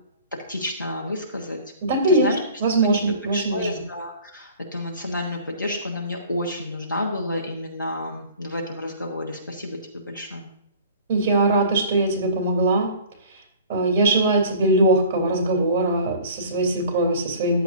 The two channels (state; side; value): inverted; both; correlation -0.46